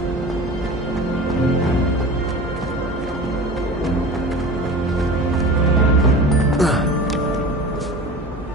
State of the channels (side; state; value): both; normal; correlation 0.35